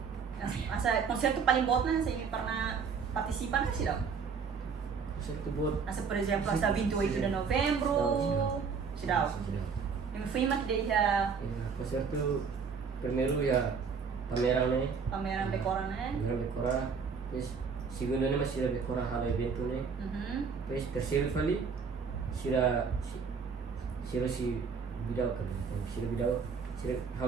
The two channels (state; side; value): quieter; left; 5.8 dB